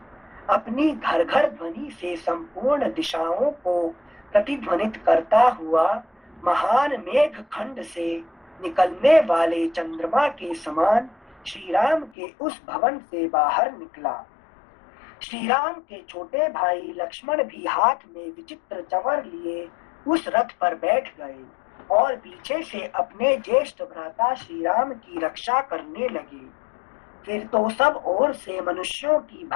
अपनी घर घर ध्वनि से संपूर्ण दिशाओं को प्रतिध्वनित करता हुआ महान मेघ खंड से निकलने वाले चंद्रमा के समान श्री राम के उस भवन से बाहर निकला। श्री राम के छोटे भाई लक्ष्मण भी हाथ में विचित्र चंवर लिए उस रथ पर बैठ गए और पीछे से अपने ज्येष्ठ भ्राता श्री राम की रक्षा करने लगे। फिर तो सब ओर से मनुष्यों की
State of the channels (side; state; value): right; drops out; at 12.1 s